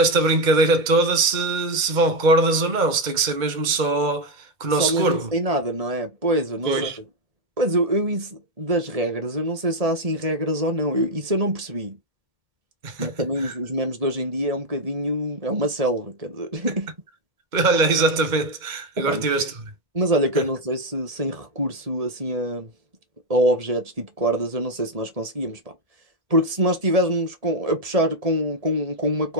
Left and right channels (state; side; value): late; left; 2.1 ms